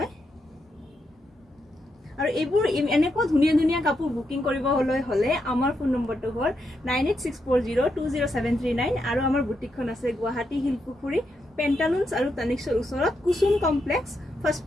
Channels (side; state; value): both; normal; correlation 0.82